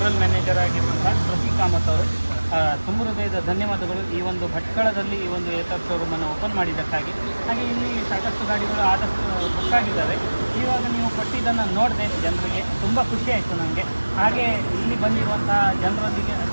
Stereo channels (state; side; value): inverted; both; correlation -1.00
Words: ಮ್ಯಾನೇಜರ್ ಆಗಿರುವಂಥ ಪ್ರತೀಕ್ ಕಾಮತ್ ಅವರು. ತುಂಬ ಹೃದಯದ ಧನ್ಯವಾದಗಳು ಈ ಒಂದು ಭಟ್ಕಳದಲ್ಲಿ ಈ ಒಂದು ಏತರ್ ಶೋರೂಮನ್ನು ಓಪನ್ ಮಾಡಿದ್ದಕ್ಕಾಗಿ. ಹಾಗೆ ಇಲ್ಲಿ ಸಾಕಷ್ಟು ಗಾಡಿಗಳು ಆದಷ್ಟು ಬುಕ್ ಆಗಿದ್ದಾವೆ. ಇವಾಗ ನೀವು ಕೊಟ್ಟಿದ್ದನ್ನು ನೋಡಿದೆ ಜನರಿಗೆ ತುಂಬ ಖುಷಿ ಆಯಿತು ನನಗೆ. ಹಾಗೆ ಇಲ್ಲಿ ಬಂದಿರುವಂಥ ಜನರೊಂದಿಗೆ